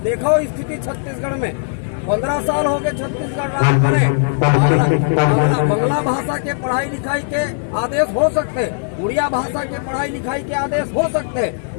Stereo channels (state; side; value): silent; right; 57 dB below the other